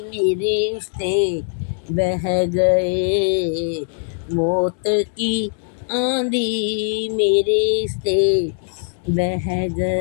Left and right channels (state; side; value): silent; right; digital silence